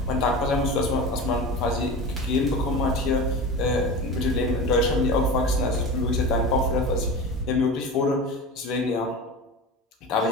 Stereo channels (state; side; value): normal; both; correlation 0.30